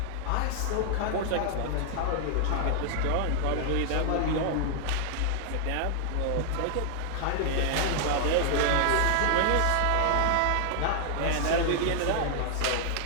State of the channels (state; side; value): different; both; correlation 0.00